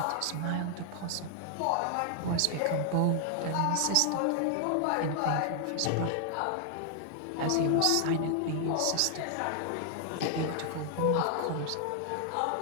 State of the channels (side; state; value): both; different; correlation 0.00